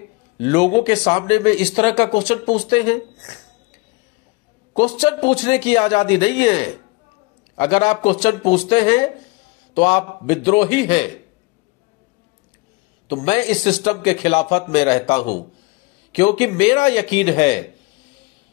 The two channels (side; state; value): right; quieter; 25.6 dB